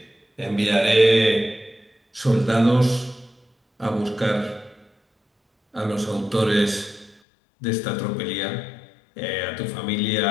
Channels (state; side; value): drops out; right; at 7.2 s